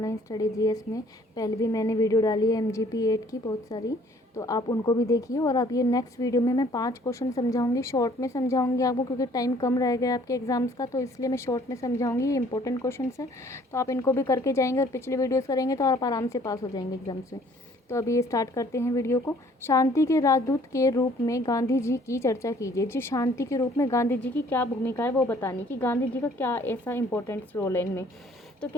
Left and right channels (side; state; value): both; normal; correlation 0.58